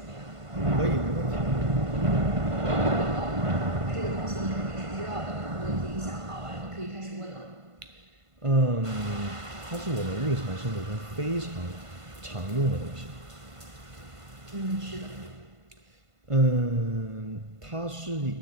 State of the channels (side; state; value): left; late; 1.5 ms